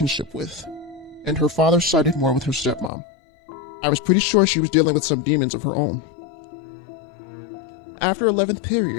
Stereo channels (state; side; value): drops out; right; at 2.9 s